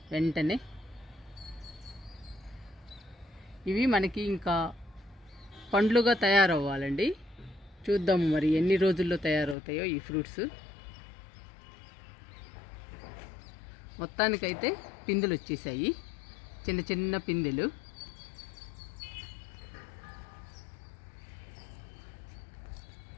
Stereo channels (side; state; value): right; drops out; at 9.6 s